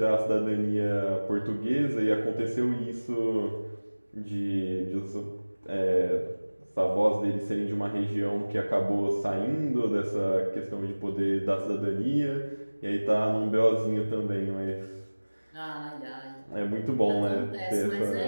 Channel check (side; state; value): both; inverted; correlation -1.00